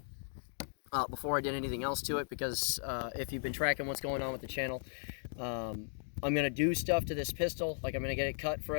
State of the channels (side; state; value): right; silent; digital silence